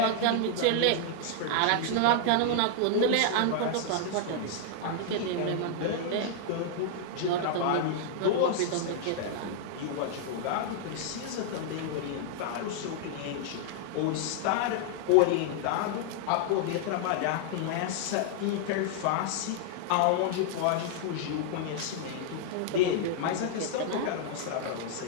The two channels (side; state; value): both; different; correlation -0.01